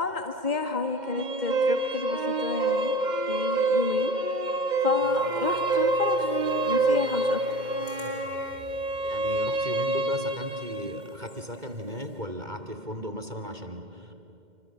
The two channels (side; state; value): left; late; 2.1 ms